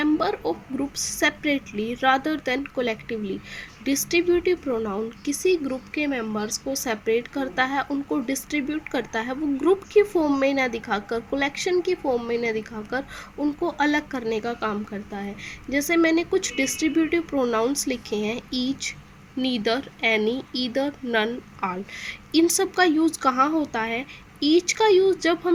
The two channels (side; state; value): both; identical; correlation 1.00